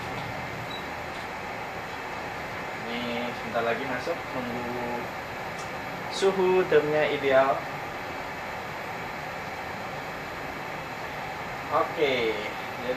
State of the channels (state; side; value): identical; both; correlation 1.00